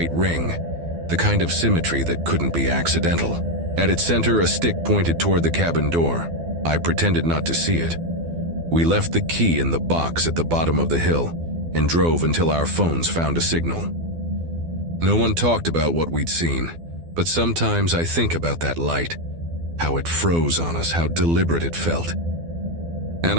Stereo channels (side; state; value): left; late; 12 ms